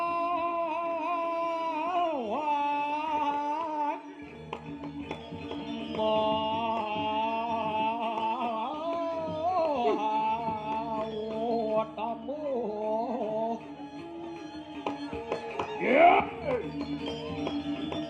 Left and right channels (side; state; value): both; identical; correlation 1.00